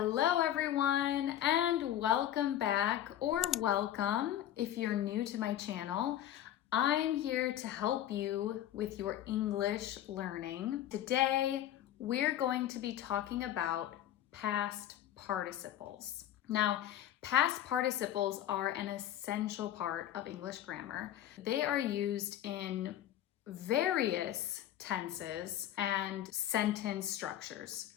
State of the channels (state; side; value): quieter; right; 11.8 dB